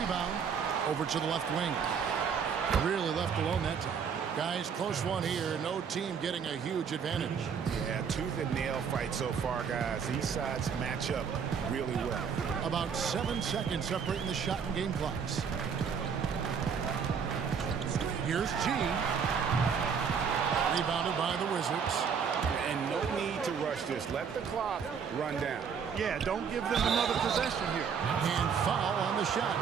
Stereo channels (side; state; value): left; quieter; 6.7 dB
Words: over to the left wing. Really left alone that time. Guys, close one here. No team getting a huge advantage. Yeah, tooth and nail fight so far, guys. These sides match up really well. About 7 seconds separating the shot and game clocks. Here's G. Rebounded by the Wizards. And no need to rush this. Let the clock run down. Yeah, don't give them another possession here. And foul on the